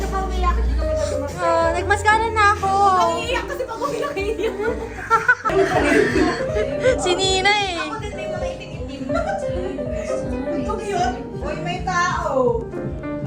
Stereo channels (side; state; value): both; identical; correlation 1.00